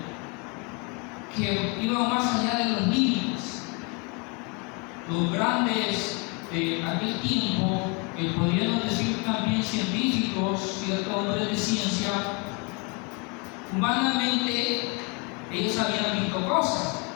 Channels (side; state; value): right; quieter; 31.5 dB